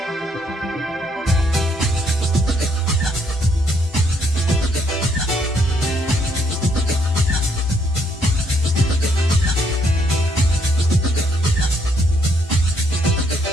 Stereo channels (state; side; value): normal; both; correlation 0.71